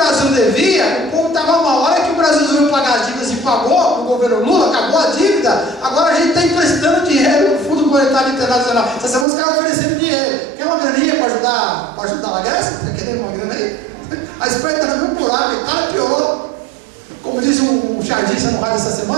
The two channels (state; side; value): drops out; left; at 9.2 s